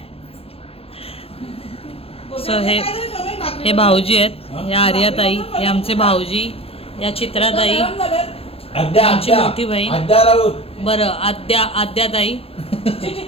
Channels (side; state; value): right; late; 0.28 ms